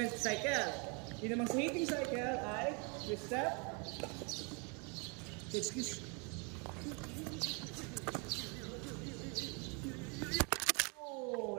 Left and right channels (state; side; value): quieter; left; 33.6 dB